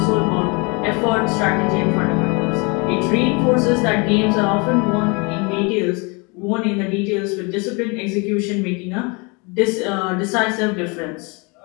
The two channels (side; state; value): right; quieter; 30.2 dB